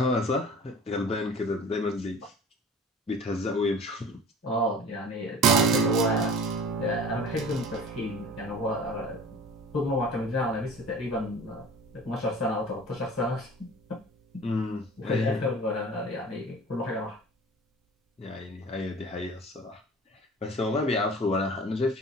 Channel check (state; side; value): normal; both; correlation 0.42